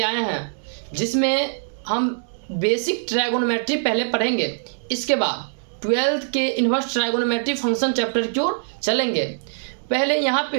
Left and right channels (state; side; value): silent; left; digital silence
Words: आए हैं जिसमें हम बेसिक ट्रायगोनोमेट्री पहले पढ़ेंगे। इसके बाद 12th के इन्वर्स ट्रायगोनोमेट्री फंक्शन चैप्टर की ओर चलेंगे। पहले यहाँ